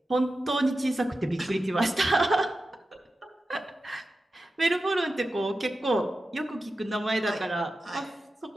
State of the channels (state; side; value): normal; both; correlation 0.92